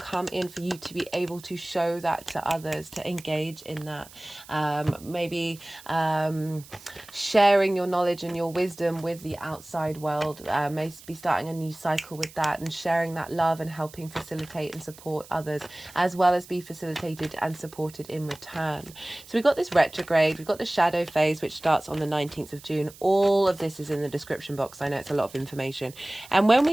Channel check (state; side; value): noise; right; hiss, 20 dB below the sound